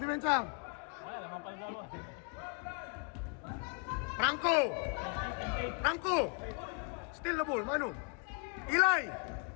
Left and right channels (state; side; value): quieter; right; 37.3 dB